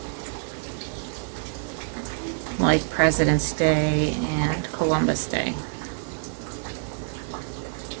like President's Day and Columbus Day.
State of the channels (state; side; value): silent; left; 61 dB below the other